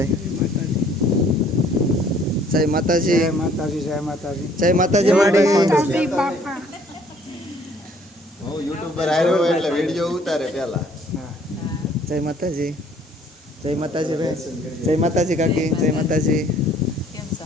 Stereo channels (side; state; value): both; normal; correlation 0.59